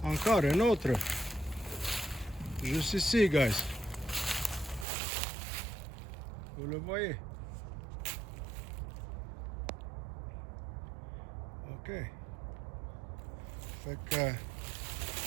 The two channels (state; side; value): drops out; left; at 4.9 s